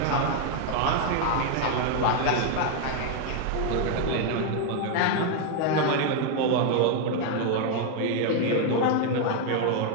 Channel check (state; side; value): different; both; correlation 0.01